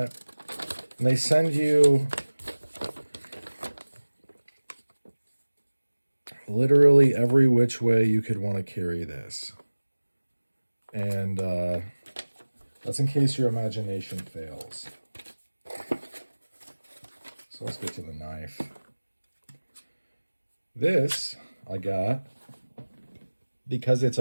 And they send you literally every which way you could want to carry this. And that's in case your imagination fails. So let's get to the knife. This I got because it's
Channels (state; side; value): inverted; both; correlation -1.00